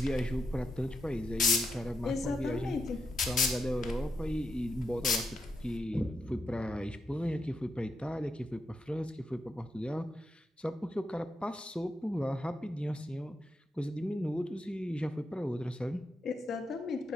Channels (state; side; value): normal; both; correlation 0.84